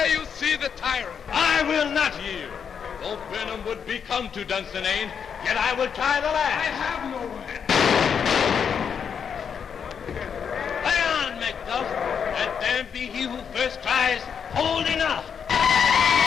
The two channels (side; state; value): right; quieter; 7.1 dB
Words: you see the tyrant. I will not yield. Though Birnam would be come to Dunsinane, yet I will try the last. I have no way. Lay on, Macduff. Let there be he who first tries. Hold enough.